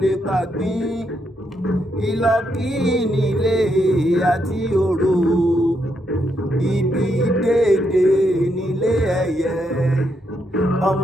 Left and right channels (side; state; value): both; normal; correlation 0.78